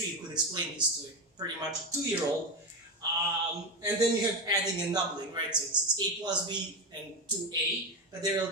you could explain this to pretty much a 2-year-old. And then you have adding and doubling, right? So it's a plus b and 2a, but they're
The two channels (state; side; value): normal; both; correlation 0.15